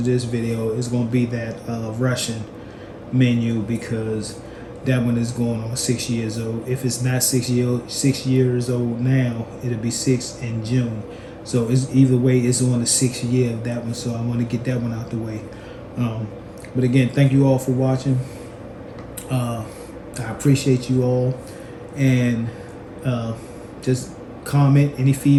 this video is going to be that Russian menu, because that one is going on 6 years old. If it's not 6 years old now, it'll be 6 in June. So it's either way, it's on the 6th year of that one. So I want to get that one out the way. But again, thank you all for watching. I appreciate you all, and just comment any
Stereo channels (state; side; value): identical; both; correlation 1.00